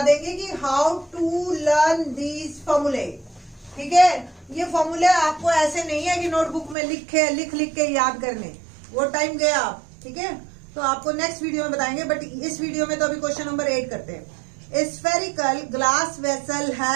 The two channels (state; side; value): drops out; left; at 6.8 s